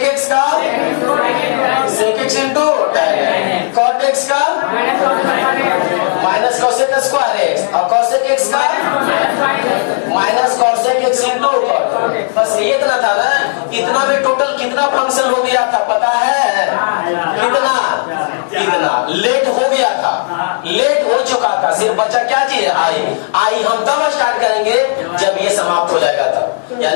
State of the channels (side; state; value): right; silent; 63 dB below the other